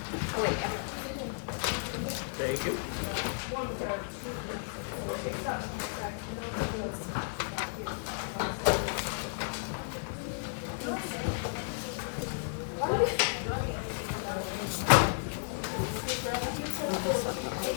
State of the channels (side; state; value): right; silent; digital silence